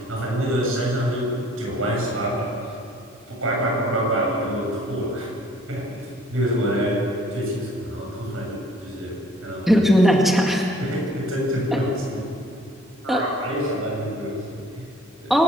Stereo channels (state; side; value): normal; both; correlation 0.56